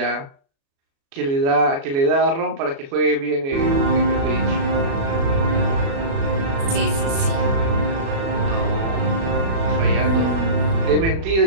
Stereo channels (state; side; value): late; left; 36 ms